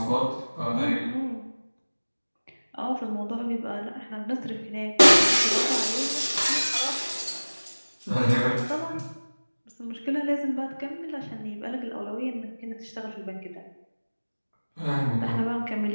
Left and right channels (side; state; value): both; inverted; correlation -1.00